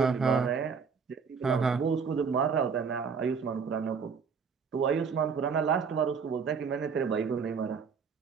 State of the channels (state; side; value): quieter; left; 5.9 dB